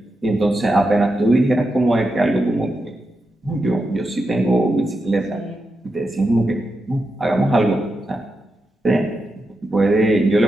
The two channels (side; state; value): both; normal; correlation 0.87